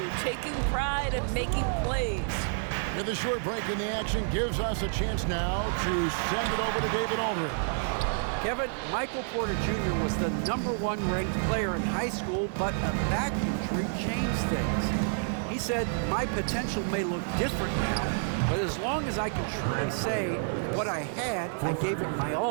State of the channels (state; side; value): silent; left; digital silence